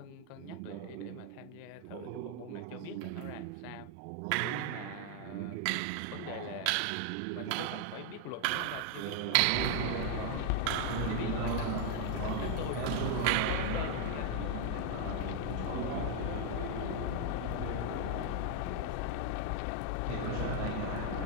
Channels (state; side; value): different; both; correlation 0.00